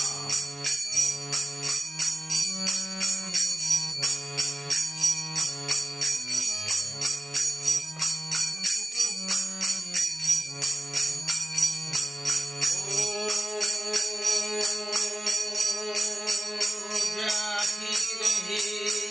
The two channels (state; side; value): normal; both; correlation 0.96